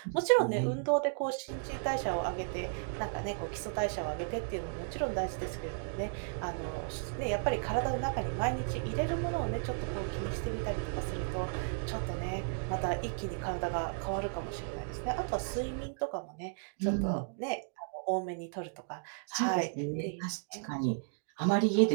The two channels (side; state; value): left; silent; digital silence